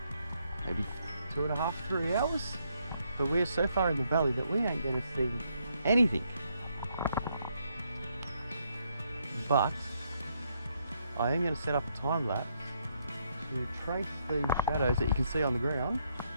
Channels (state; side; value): inverted; both; correlation -0.75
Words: maybe 2.5, 3 hours. But we're so far in the valley that we ain't going to see anything. But I am going to set up a time lapse to trace these shadows that you can see on the ground